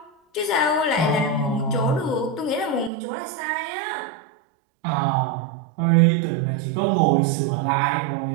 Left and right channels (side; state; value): left; drops out; at 2.9 s